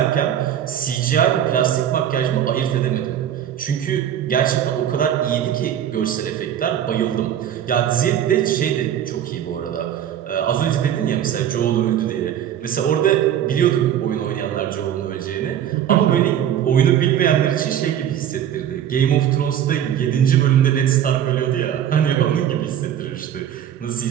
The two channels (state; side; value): quieter; left; 10.2 dB